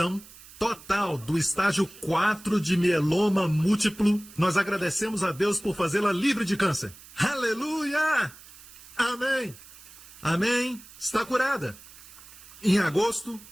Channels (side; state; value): right; noise; hiss, 20 dB below the sound